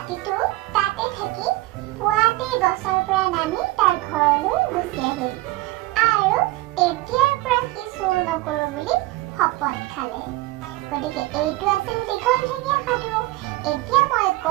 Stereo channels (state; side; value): quieter; left; 18.9 dB